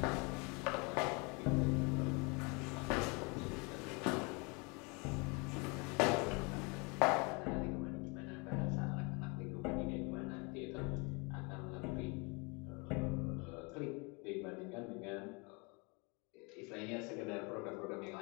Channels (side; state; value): right; quieter; 30.2 dB